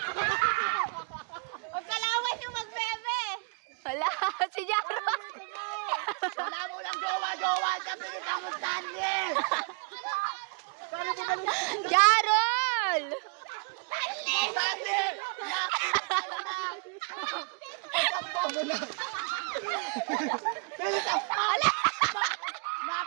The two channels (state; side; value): quieter; left; 37.0 dB